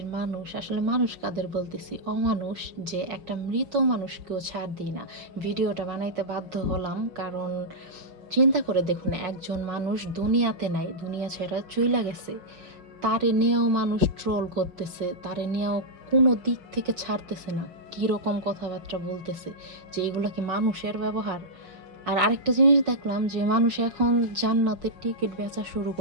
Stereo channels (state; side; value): late; left; 6.0 ms